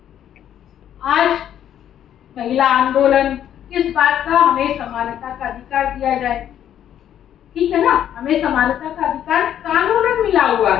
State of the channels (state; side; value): quieter; right; 10.4 dB